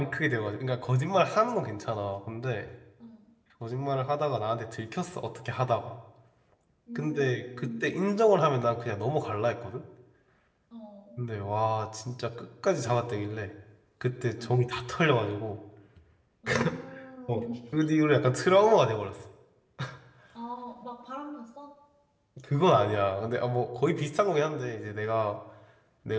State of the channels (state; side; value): identical; both; correlation 1.00